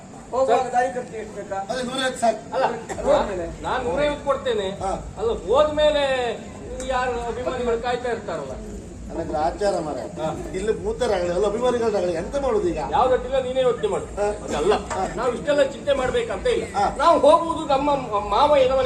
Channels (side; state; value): both; identical; correlation 1.00